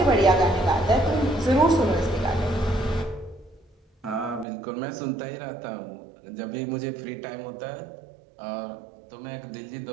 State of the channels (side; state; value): left; drops out; at 4.5 s